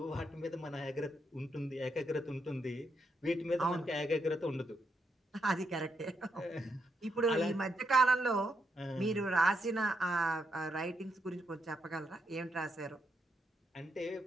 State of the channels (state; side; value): normal; both; correlation 0.80